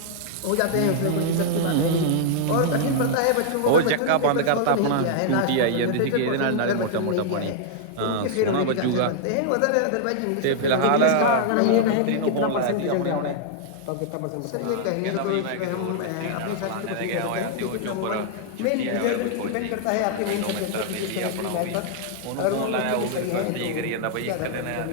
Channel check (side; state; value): both; different; correlation -0.01